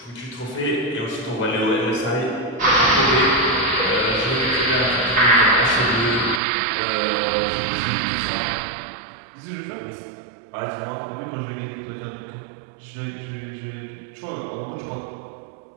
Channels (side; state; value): left; drops out; at 6.4 s